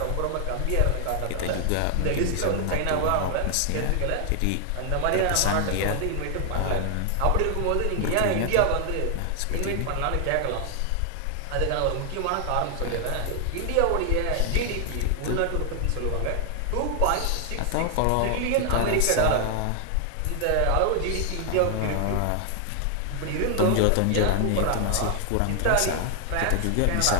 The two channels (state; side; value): different; both; correlation 0.00